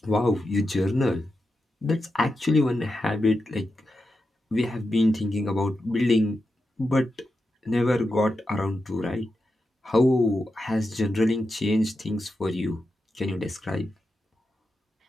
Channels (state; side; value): normal; both; correlation 0.88